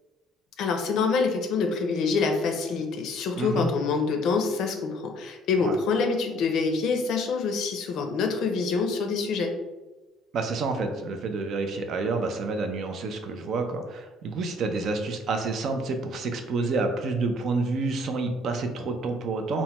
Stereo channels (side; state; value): both; normal; correlation 0.58